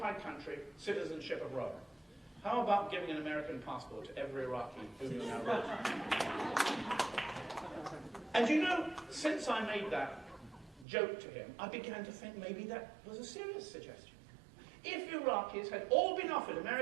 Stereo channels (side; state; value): left; drops out; at 10.9 s